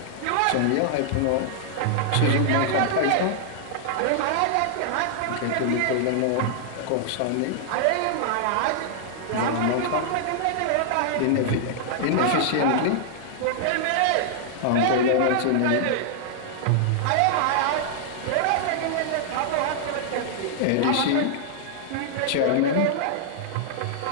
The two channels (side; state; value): both; different; correlation -0.01